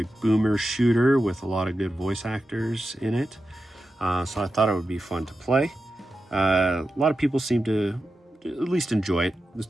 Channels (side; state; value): both; normal; correlation 0.91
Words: boomer shooter with a lot of good voice actors in it. So I thought it would be fun to play. A lot of people seem to at least enjoy it. This